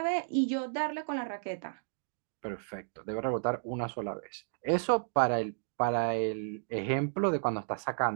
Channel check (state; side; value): silent; left; digital silence